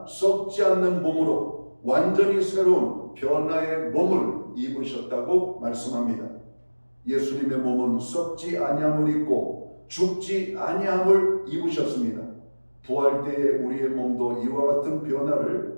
썩지 않는 몸으로 완전히 새로운 변화의 몸을 입으셨다고 말씀합니다. 예수님의 몸은 썩지 아니함을 입고 죽지 아니함을 입으셨습니다. 부활 때에 우리의 몸도 이와 같은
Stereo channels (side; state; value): both; inverted; correlation -1.00